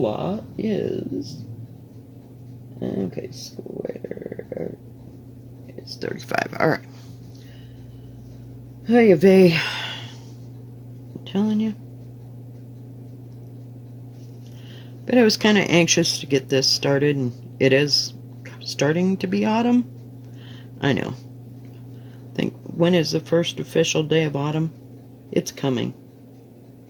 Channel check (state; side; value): identical; both; correlation 1.00